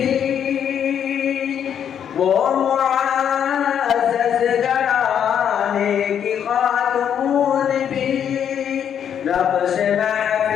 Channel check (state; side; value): quieter; right; 8.7 dB